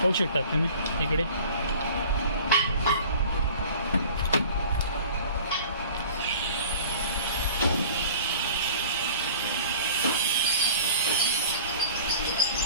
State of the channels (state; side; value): inverted; both; correlation -0.44